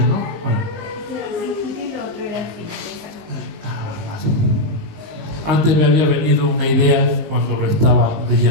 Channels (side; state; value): left; late; 19 ms